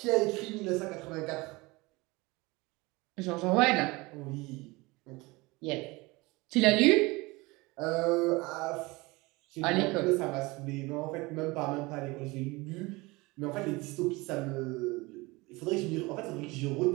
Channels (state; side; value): quieter; left; 23.3 dB